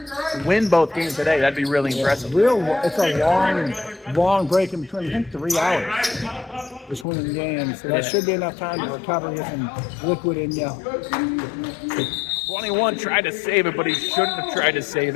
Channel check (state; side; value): drops out; right; at 7.1 s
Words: win both games today. That'd be really impressive. It's a long break in between. I think 3 hours between the games. So that should be enough time to recover, get some liquid in you. 21 tried to save it, but he shouldn't have tried to save